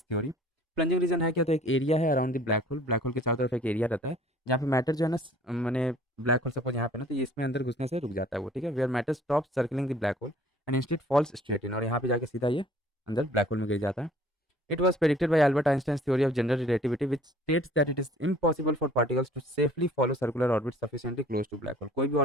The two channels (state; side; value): normal; both; correlation 0.53